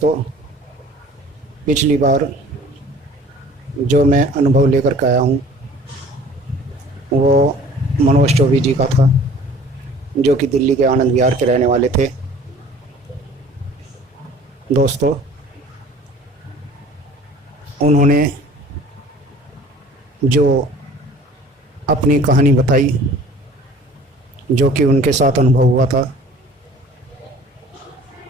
पिछली बार जो मैं अनुभव लेकर के आया हूं वो मनोज चौबे जी का था, जो कि दिल्ली के आनंद विहार के रहने वाले थे। दोस्तों, उन्होंने जो अपनी कहानी बताई, जो कि उनके साथ अनुभव हुआ था,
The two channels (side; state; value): both; normal; correlation 0.48